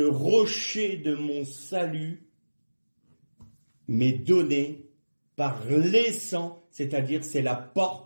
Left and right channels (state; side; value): inverted; both; correlation -1.00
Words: rocher de mon salut m'est donné par les sangs, c'est-à-dire c'est la